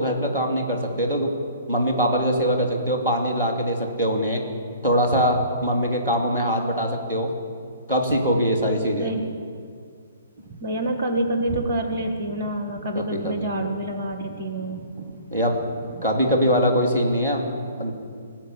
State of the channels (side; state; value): both; inverted; correlation -0.48